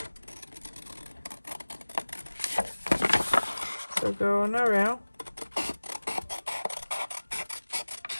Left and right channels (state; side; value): inverted; both; correlation -1.00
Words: So going around.